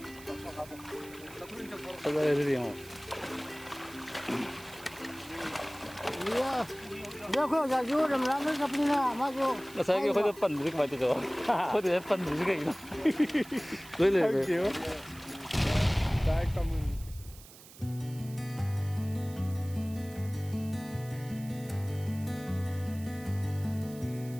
ꯐꯖꯔꯦ ꯑꯗꯨꯗꯤ ꯌꯦꯡꯉꯣ ꯑꯩꯈꯣꯏ ꯑꯣꯖꯥꯁꯨ ꯔꯝꯔꯥꯝꯗ ꯆꯠꯄꯅꯤꯅ ꯃꯥꯁꯨ ꯉꯁꯥꯏꯒꯤ ꯑꯩꯈꯣꯏꯗ ꯄꯟꯕꯗꯤ ꯀꯃꯥꯏꯅ ꯇꯧꯗꯣ ꯑꯩꯈꯣꯏꯗ ꯄꯟꯕꯗꯤ ꯀꯩꯒꯤꯅꯣ ꯂꯣꯏ ꯂꯩꯔꯦ ꯗꯥꯏꯔꯦꯛ ꯀꯃꯟ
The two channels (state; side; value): noise; right; hiss, 19 dB below the sound